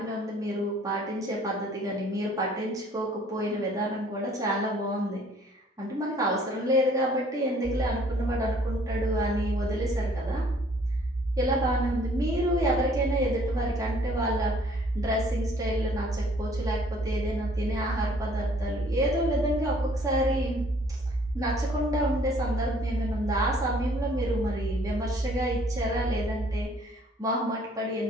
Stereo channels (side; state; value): both; normal; correlation 0.58